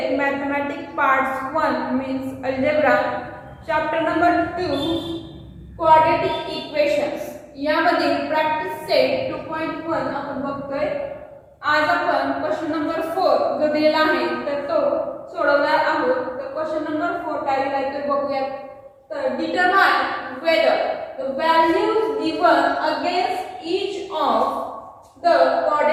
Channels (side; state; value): both; identical; correlation 1.00